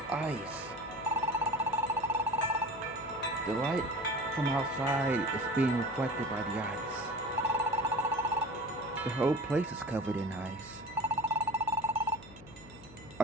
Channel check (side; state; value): left; noise; hum, 19 dB below the sound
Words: ice. The light from outside is being reflected by the ice. The whole place is covered in ice.